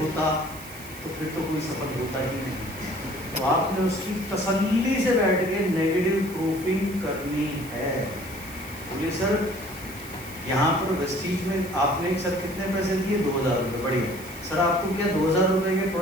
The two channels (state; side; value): noise; right; hiss, 16 dB below the sound